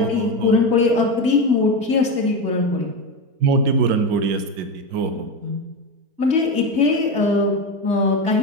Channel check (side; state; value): left; late; 4.4 ms